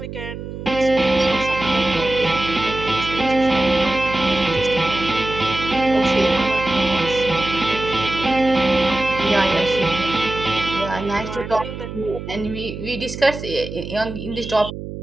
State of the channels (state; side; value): noise; right; hum, 9 dB below the sound